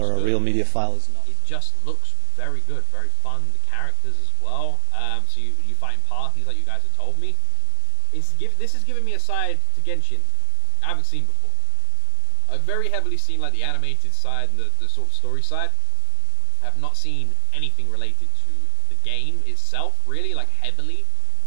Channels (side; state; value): both; different; correlation 0.00